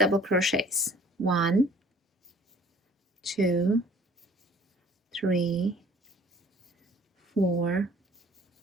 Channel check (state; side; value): normal; both; correlation 0.53